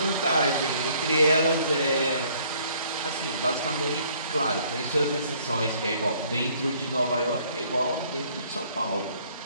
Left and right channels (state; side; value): inverted; both; correlation -0.61